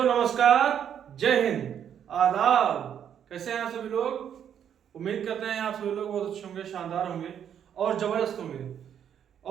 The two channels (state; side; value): quieter; left; 9.0 dB